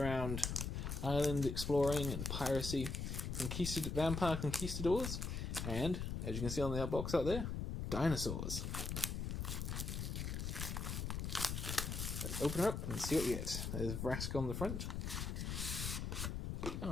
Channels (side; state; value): left; noise; rumble, 3 dB below the sound